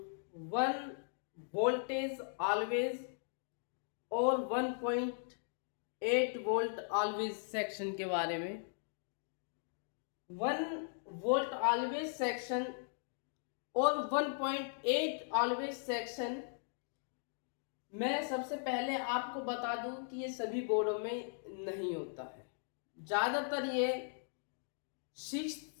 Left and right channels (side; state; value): right; silent; digital silence